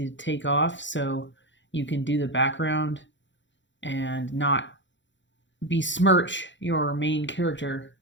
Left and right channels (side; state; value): right; late; 0.54 ms